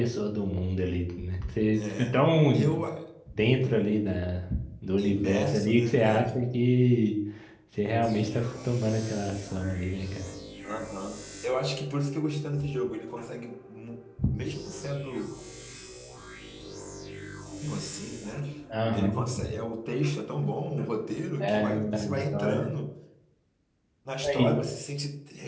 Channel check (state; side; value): identical; both; correlation 1.00